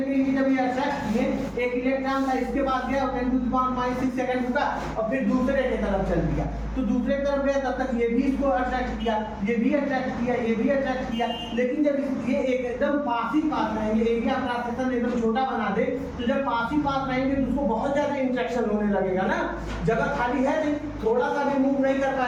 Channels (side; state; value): both; identical; correlation 1.00